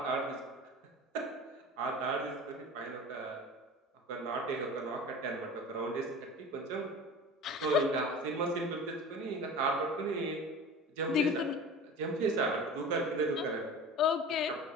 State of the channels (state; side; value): normal; both; correlation 0.36